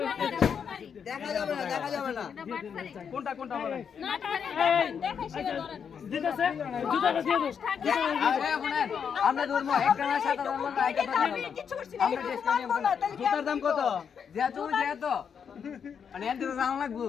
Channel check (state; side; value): quieter; right; 7.1 dB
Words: দেখা যাবে না কোনটা কোনটা বলেন আমরা ধরবো একটা না 7,000 টাকা একটা কিছু করছি না মানবো না তাহলে কি জুতার দাম কত যেত মানে এত দাম লাগবে